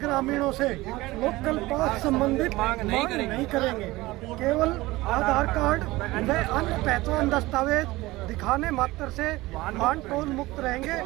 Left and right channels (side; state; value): left; quieter; 19.4 dB